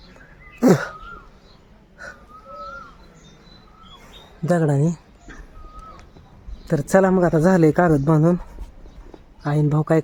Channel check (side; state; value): both; identical; correlation 1.00